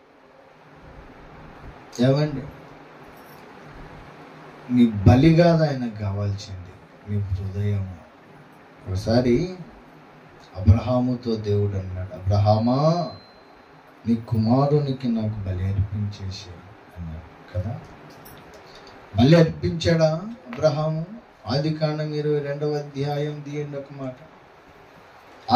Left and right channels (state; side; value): identical; both; correlation 1.00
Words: ఏమండి, నీ బలి కాదు ఆయనకు కావాల్సింది, నీ హృదయం. ఒకసారి అబ్రహాముతో దేవుడు అన్నాడు, అబ్రహామా నీ కుమారునికి నాకు బలి అర్పించేసి అన్నాడు కదా. బలి అర్పించాడా అబ్రహాము? ఆదికాండం 22వ అధ్యాయం తీయండి ఒక మాట.